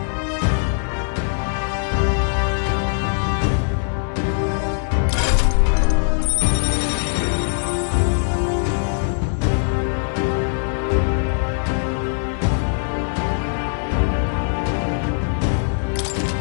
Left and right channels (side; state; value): right; silent; 65 dB below the other